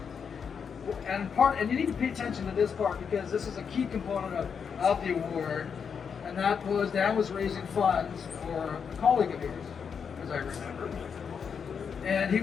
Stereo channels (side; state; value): right; quieter; 6.6 dB